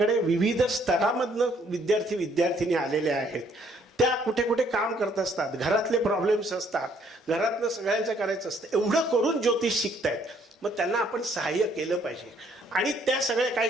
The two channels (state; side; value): normal; both; correlation 0.65